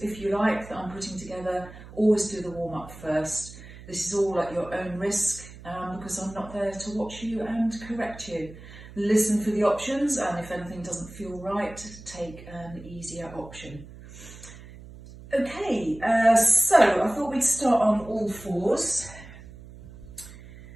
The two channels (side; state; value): right; noise; hum, 17 dB below the sound